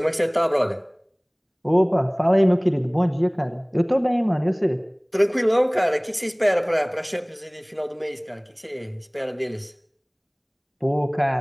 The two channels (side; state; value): both; identical; correlation 1.00